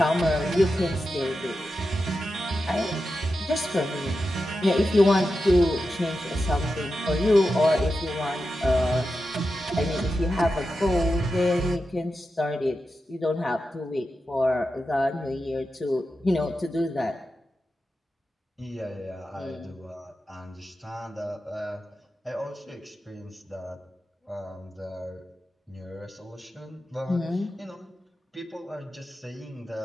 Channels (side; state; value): both; normal; correlation 0.90